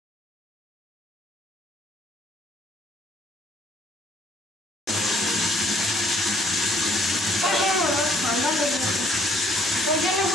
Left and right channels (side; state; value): both; normal; correlation 0.63